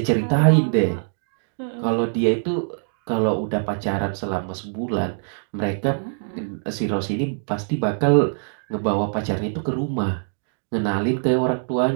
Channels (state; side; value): silent; left; digital silence